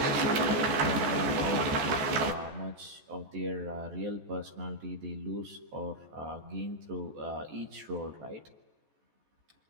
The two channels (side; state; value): left; late; 14 ms